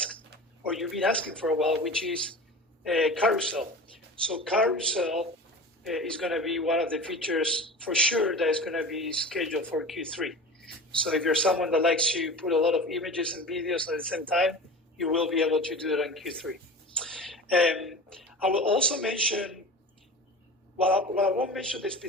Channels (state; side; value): normal; both; correlation 0.35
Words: or you've been asking for a while, which is carousel. So carousel is going to be one of the features for sure that is going to be scheduled for Q3. So if you're someone that likes to put a lot of images and videos at the same time, you will be able to do it on Q3. I will also mention, well, I won't mention the